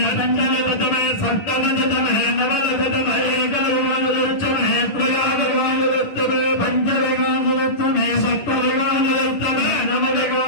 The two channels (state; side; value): late; right; 10 ms